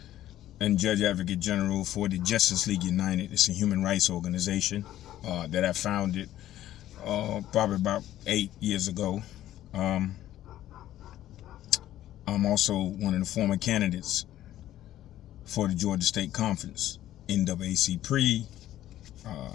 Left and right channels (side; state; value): right; quieter; 13.2 dB